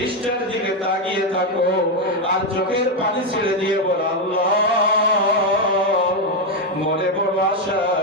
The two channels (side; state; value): both; normal; correlation 0.05